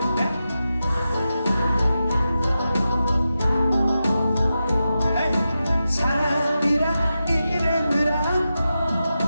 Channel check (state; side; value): inverted; both; correlation -0.90